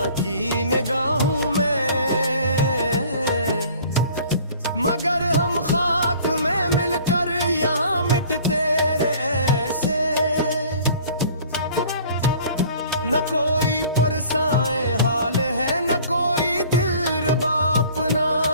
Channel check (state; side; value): inverted; both; correlation -0.50